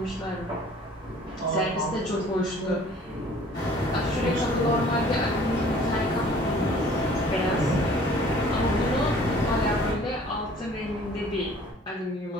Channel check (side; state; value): both; normal; correlation 0.52